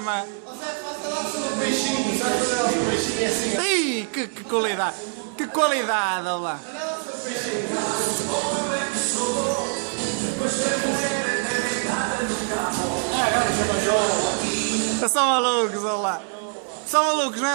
Ih, que qualidade! Que qualidade, olha lá! São malucos, olha lá! São malucos, não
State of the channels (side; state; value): left; silent; 56 dB below the other